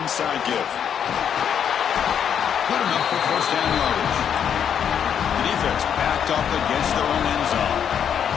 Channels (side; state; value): right; quieter; 8.4 dB